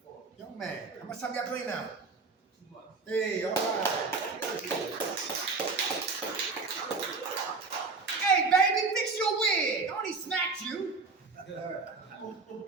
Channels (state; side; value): quieter; left; 4.2 dB